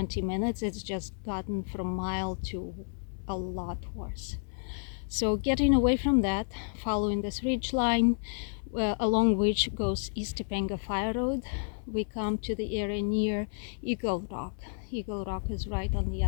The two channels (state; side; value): silent; right; 57 dB below the other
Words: minutes, it's just gotten from mild to a lot worse. So getting away from that, following this ridge line, along which goes East Topanga Fire Road, we come to the area near Eagle Rock. Eagle Rock is right on the